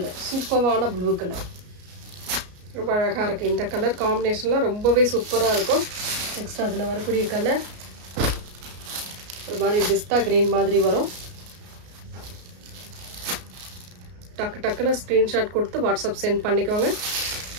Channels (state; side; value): late; left; 33 ms